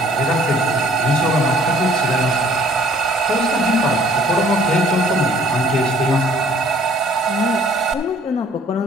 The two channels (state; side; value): normal; both; correlation 0.57